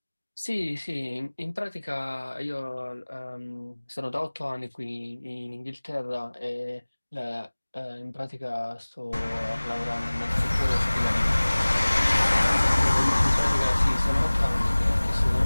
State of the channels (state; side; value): inverted; both; correlation -1.00